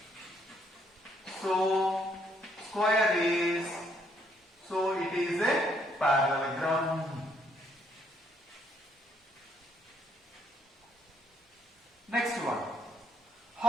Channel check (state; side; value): normal; both; correlation 0.70